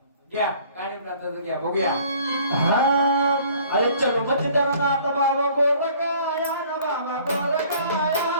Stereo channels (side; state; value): both; inverted; correlation -0.54